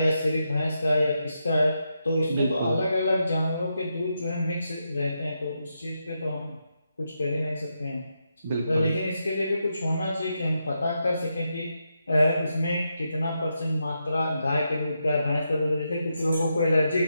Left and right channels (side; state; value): both; inverted; correlation -0.84